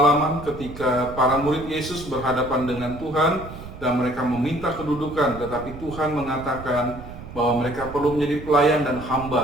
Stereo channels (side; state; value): right; noise; rumble, 13 dB below the sound